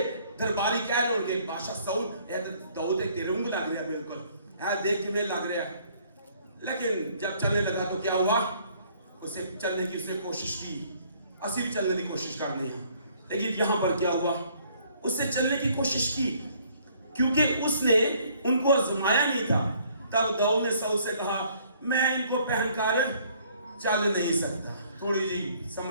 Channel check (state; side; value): inverted; both; correlation -0.62